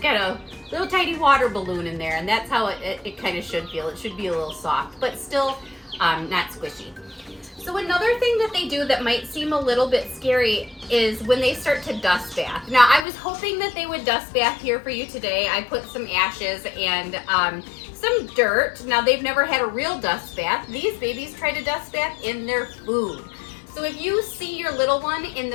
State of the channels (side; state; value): right; drops out; at 13.1 s